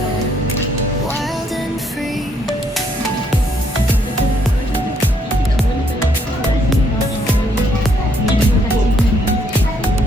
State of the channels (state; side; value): normal; both; correlation 0.70